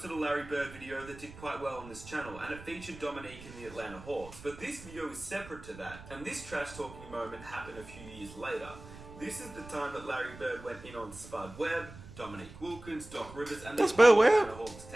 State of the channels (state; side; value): noise; right; rumble, 16 dB below the sound